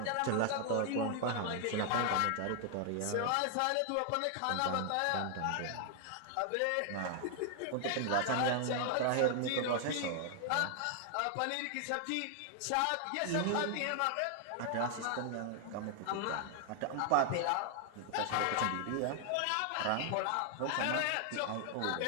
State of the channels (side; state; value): both; different; correlation 0.00